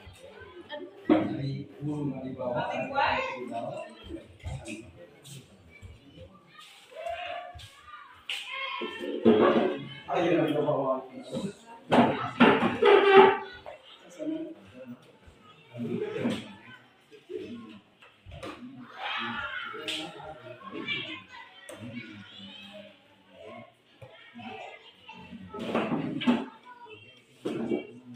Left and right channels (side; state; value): both; identical; correlation 1.00